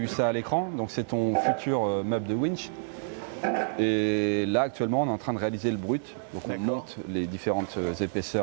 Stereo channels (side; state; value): left; silent; digital silence